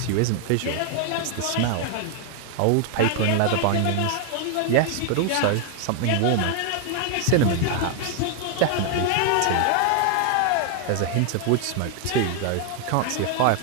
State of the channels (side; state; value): both; different; correlation 0.00